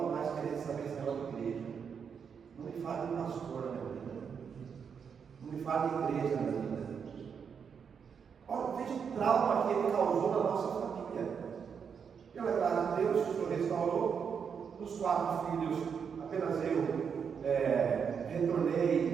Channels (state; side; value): quieter; left; 6.8 dB